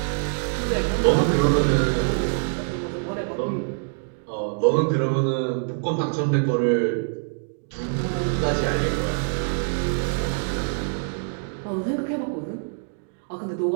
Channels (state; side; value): silent; left; digital silence